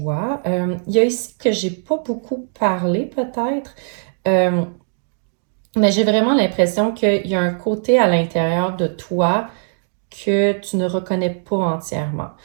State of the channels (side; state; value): left; silent; digital silence